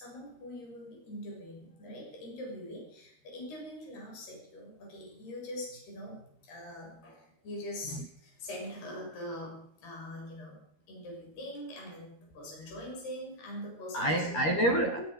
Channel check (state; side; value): late; right; 13 ms